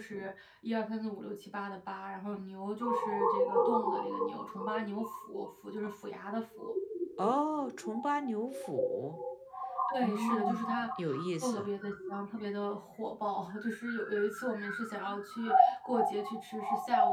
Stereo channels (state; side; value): identical; both; correlation 1.00